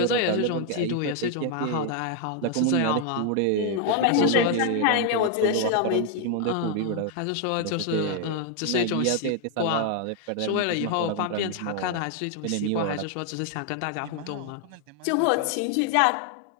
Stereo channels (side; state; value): both; different; correlation 0.00